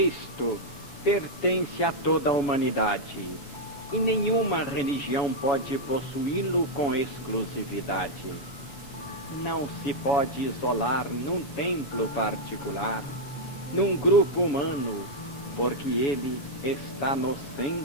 pertence a toda a humanidade, e nenhuma religião pode possuí-lo com exclusividade. Não se pode isolar num templo particular, num grupo humano, porque ele está no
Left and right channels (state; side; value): late; right; 7.1 ms